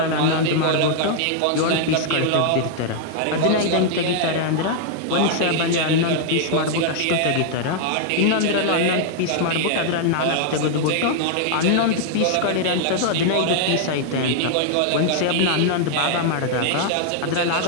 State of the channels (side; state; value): both; different; correlation 0.00